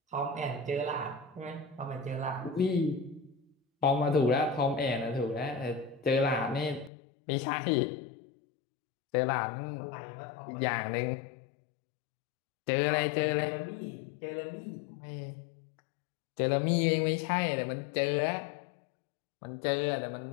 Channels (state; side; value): drops out; right; at 6.9 s